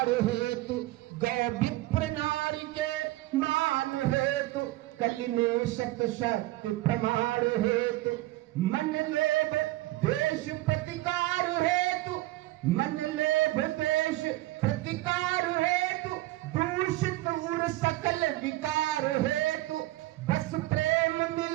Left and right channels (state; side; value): quieter; left; 17.9 dB